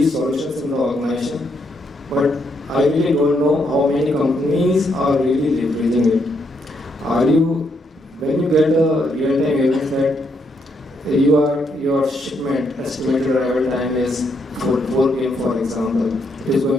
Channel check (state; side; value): normal; both; correlation 0.76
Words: solutions in the organization, but I really don't know how many companies are really leveraging it. When you get a real-time event that your shipment estimated arrival time is 4 p.m. for example, it is